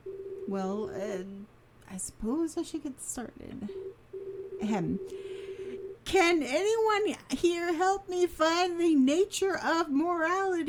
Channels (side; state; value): both; identical; correlation 1.00